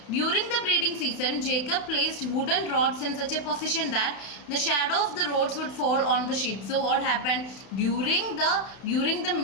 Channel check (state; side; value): late; right; 32 ms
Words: During the breeding season, Jacob placed wooden rods in such a position that the shadow of the rods would fall on the sheep. So what happened during the